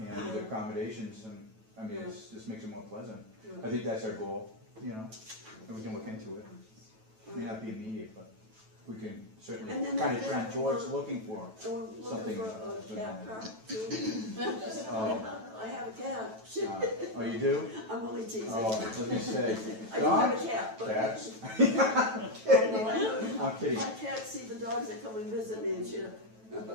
accommodations, and, I mean, it just makes it more pleasant. I think that's our goal, you know, and we can look into it. It may not be immediate, but we can certainly And then kind of after trend that, towards looking for. And we're looking Something for that's a been- cat park too. Oh, I have a cat. oh, you do? I'm only teasing. Oh, I was gonna say, I do have dogs, a cat, but. cats? I'm kidding. My cat see the dogs that come and visit me and she.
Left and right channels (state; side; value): late; left; 9.1 ms